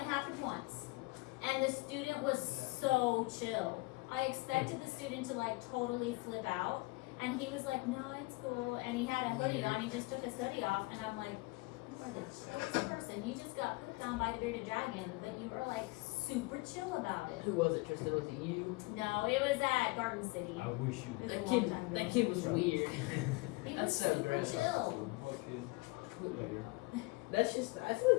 happened once. And the student was so chill. I expected the student to like totally flip out. And he was like, no, it's cool. And he had a hoodie on. He just took his hoodie off. And I'm like, you are the chillest person. You just got pooped on by the bearded dragon. But you were like super chill about it. Who was it, Tristan? Was it you? No, it was at Garden City. I wish you It was a That long kid. time ago. That kid was weird. He That's was so super gross. chill. That's just. I feel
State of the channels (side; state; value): right; quieter; 23.8 dB